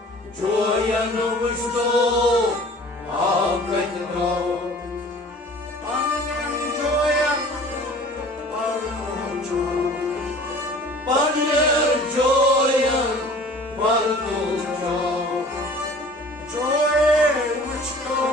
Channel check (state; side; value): normal; both; correlation 0.46